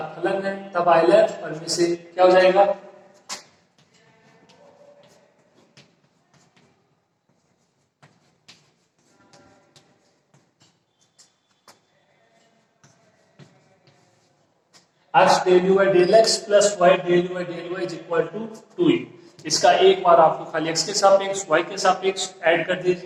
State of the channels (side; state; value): both; identical; correlation 1.00